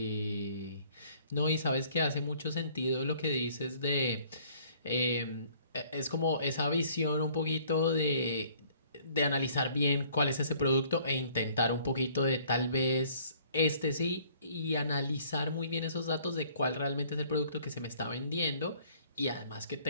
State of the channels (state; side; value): inverted; both; correlation -0.58